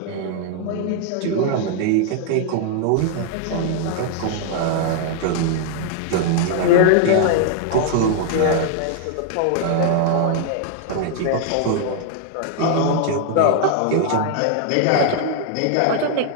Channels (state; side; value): different; both; correlation 0.00